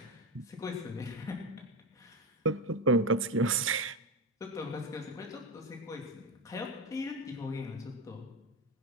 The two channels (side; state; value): both; normal; correlation 0.17